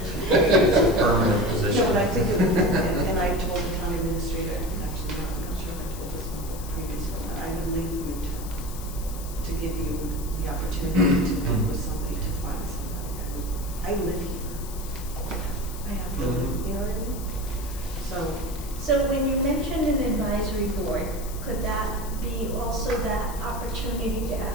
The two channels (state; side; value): noise; left; hiss, 14 dB below the sound